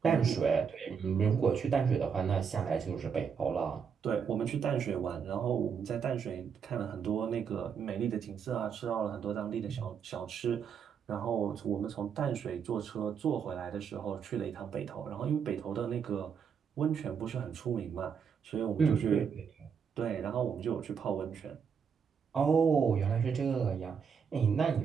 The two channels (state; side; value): quieter; left; 6.8 dB